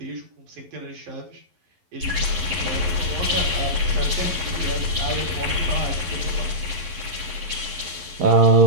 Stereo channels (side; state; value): left; late; 11 ms